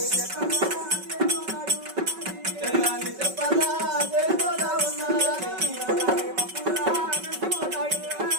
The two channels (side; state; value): left; late; 5.3 ms